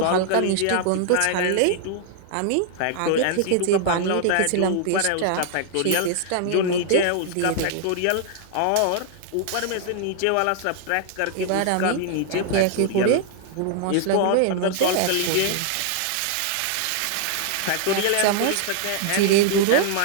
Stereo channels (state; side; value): different; both; correlation 0.00